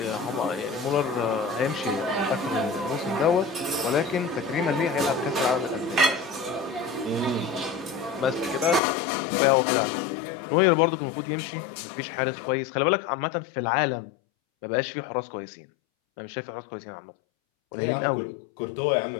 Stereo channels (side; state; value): right; drops out; at 8.8 s